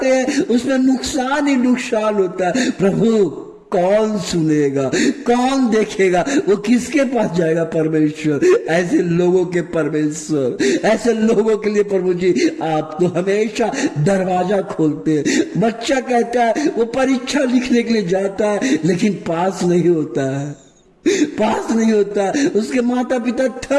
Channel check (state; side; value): identical; both; correlation 1.00